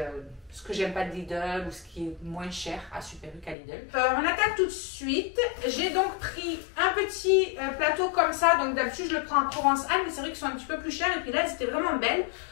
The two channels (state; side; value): drops out; right; at 3.6 s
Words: ce que j'aime pas de Lidl ou ce qui est moins cher à Super U qu'à Lidl. On attaque tout de suite. J'ai donc pris un petit plateau comme ça. Donc, d'habitude, je le prends à Provençal, mais c'est vrai qu'ils sont un petit peu plus chers. Et puis là, c'était vraiment belle.